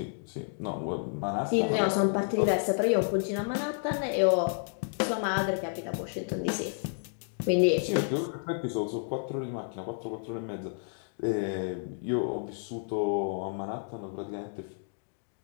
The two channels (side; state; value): right; silent; digital silence